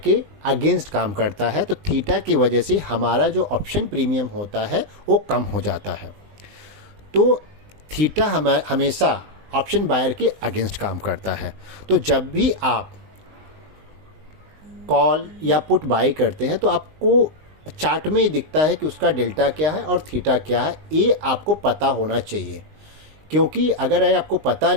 अगेंस्ट काम करता है। तो थीटा की वजह से हमारा जो ऑप्शन प्रीमियम होता है वो कम हो जाता है। तो थीटा हमेशा ऑप्शन बायर के अगेंस्ट काम करता है। तो जब भी आप कॉल या पुट बाई करते हैं तो आपको चार्ट में ही दिखता है कि उसका डेल्टा क्या है और थीटा क्या है, ये आपको पता होना चाहिए। क्योंकि अगर आपको पता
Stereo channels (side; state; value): left; late; 20 ms